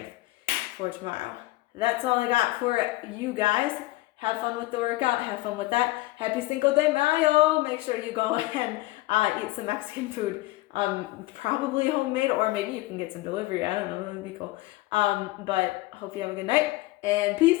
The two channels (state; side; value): quieter; right; 19.6 dB